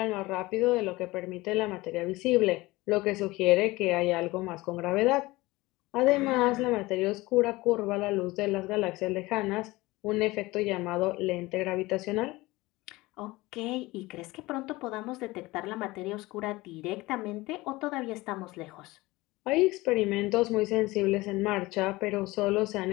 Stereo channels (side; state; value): right; quieter; 20.5 dB